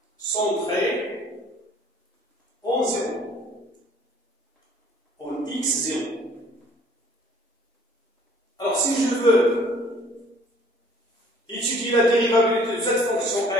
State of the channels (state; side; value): normal; both; correlation 0.55